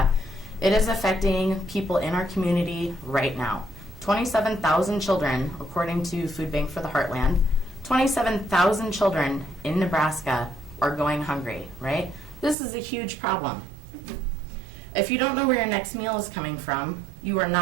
It is affecting people in our community right now. 27,000 children, according to Food Bank for the Heartland, 27,000 children in Nebraska are going hungry, right? This is a huge problem. If you don't know where your next meal is coming from, you are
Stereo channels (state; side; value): drops out; left; at 12.6 s